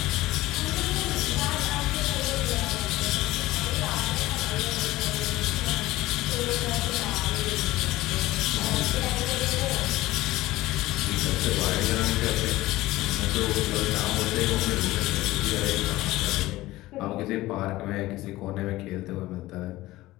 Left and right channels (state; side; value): quieter; right; 17.6 dB